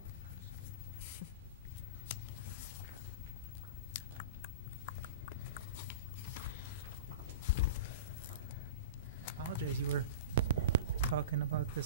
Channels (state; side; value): inverted; both; correlation -0.33